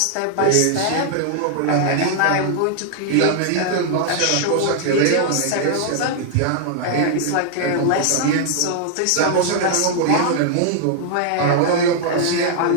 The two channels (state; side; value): different; both; correlation 0.00